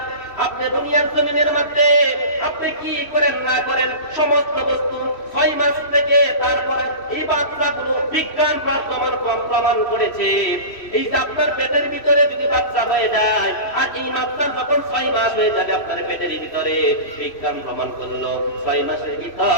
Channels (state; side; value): late; right; 3.1 ms